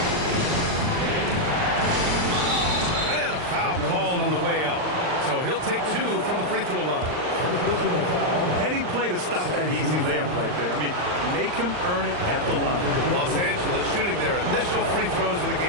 And a foul called on the way up. So he'll take 2 from the free throw line. Heading play to stop that easy layup right there. I mean, make him earn it at the line. Los Angeles shooting their initial free throws of the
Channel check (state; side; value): late; left; 39 ms